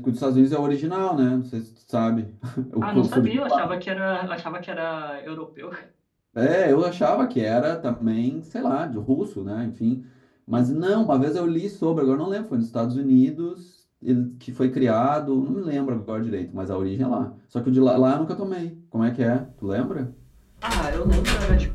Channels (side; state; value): both; identical; correlation 1.00